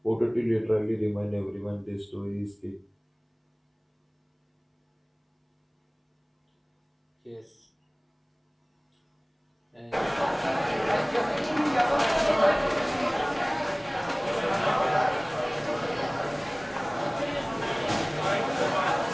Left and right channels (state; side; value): identical; both; correlation 1.00